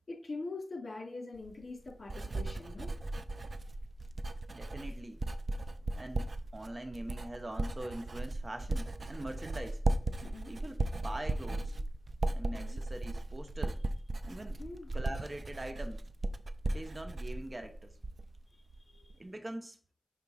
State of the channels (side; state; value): both; normal; correlation 0.96